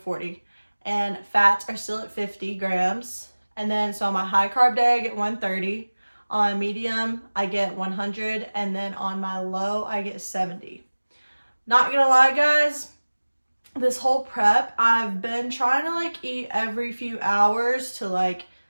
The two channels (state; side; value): inverted; both; correlation -1.00